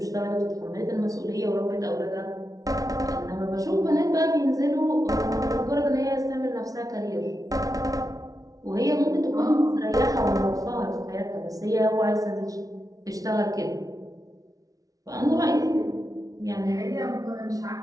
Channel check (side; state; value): left; late; 0.18 ms